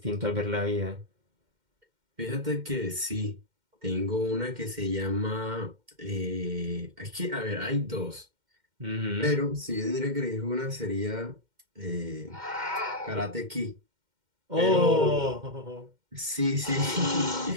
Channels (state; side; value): late; left; 2.1 ms